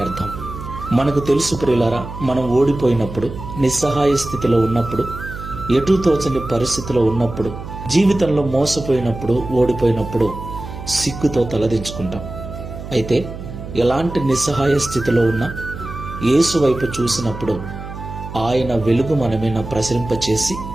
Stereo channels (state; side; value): noise; right; hum, 10 dB below the sound